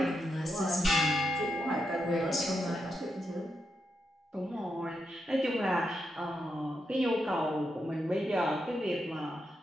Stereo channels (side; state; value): both; normal; correlation 0.84